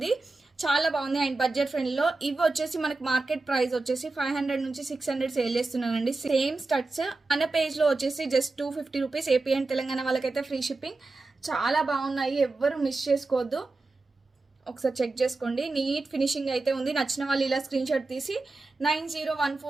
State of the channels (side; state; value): left; quieter; 3.4 dB